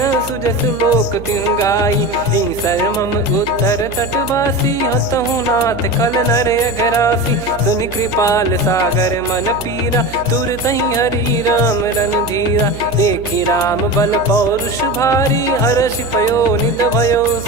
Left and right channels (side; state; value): right; noise; hum, 13 dB below the sound